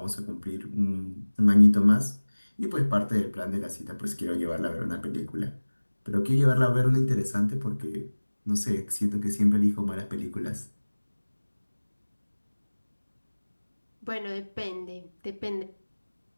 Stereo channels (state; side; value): inverted; both; correlation -1.00